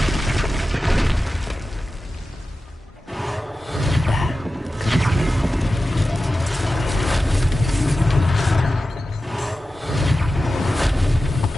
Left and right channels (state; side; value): normal; both; correlation 0.94